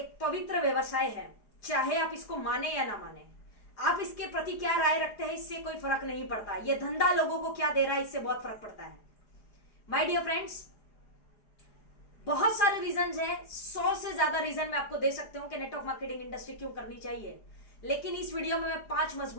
पवित्र व्यवसाय है, चाहे आप इसको माने या ना माने। आप इसके प्रति क्या राय रखते हैं इससे कोई फर्क नहीं पड़ता, ये धंधा लोगों को क्या दे रहा है इससे बहुत फर्क पड़ता है। माय डियर फ्रेंड्स, बहुत सारे रीजन है, 100 से ज्यादा रीजन मैं आपको दे सकती हूं कि नेटवर्क मार्केटिंग इंडस्ट्री क्यों करनी चाहिए, लेकिन इस वीडियो में मैं 5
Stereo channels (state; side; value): late; right; 4.9 ms